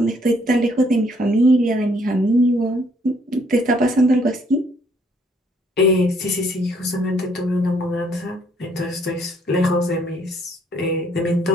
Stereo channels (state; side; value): normal; both; correlation 0.66